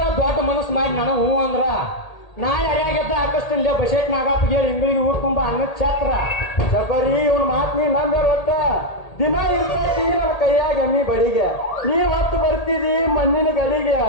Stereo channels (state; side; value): late; right; 1.8 ms